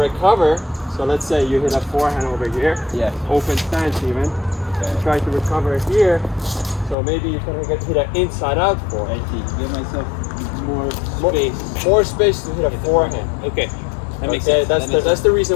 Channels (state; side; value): drops out; right; at 7.0 s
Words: so let's say you hit a forehand over here, open stance even, you try to recover here, so maybe you can hit an inside out forehand. Give myself More space to hit a forehand. Okay. That makes sense. That's the